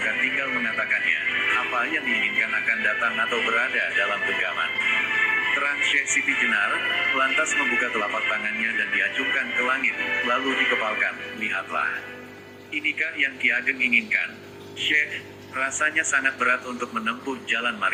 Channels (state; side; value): identical; both; correlation 1.00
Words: tinggal mengatakannya. Apa yang diinginkan akan datang atau berada dalam genggaman. Terang Syekh Siti Jenar, lantas membuka telapak tangannya dan diacungkan ke langit, lalu dikepalkan, lihatlah. Inikah yang Ki Ageng inginkan? Syekh, rasanya sangat berat untuk menempuh jalan